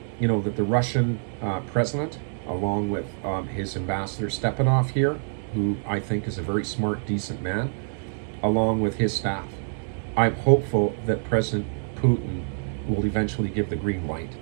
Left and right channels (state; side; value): silent; left; 61 dB below the other